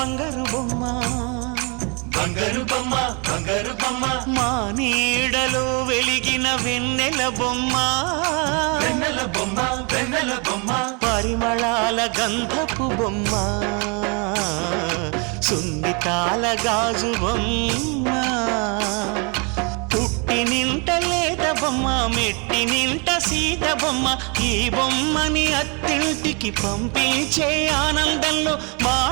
బొమ్మ బంగారు బొమ్మ బంగారు బొమ్మ మా నీడలో వెలిగిన వెన్నెల బొమ్మ వెన్నెల బొమ్మ వెన్నెల బొమ్మ పరిమళాల గంధపు బొమ్మ సున్నితాల గాజు బొమ్మ పుట్టి నింట లేత బొమ్మ మెట్టి నింట సీత బొమ్మ ఈ బొమ్మని అత్తింటికి పంపించే ఆనందంలో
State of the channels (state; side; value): quieter; left; 33.1 dB